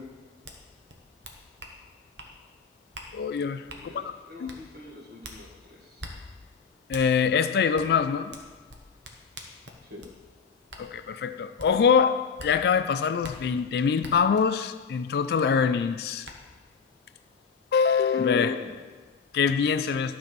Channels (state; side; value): quieter; right; 5.9 dB